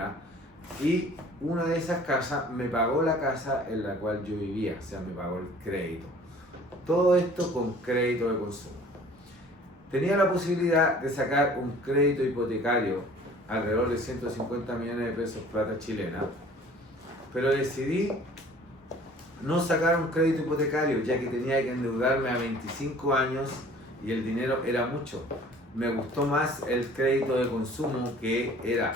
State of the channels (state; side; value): normal; both; correlation 0.50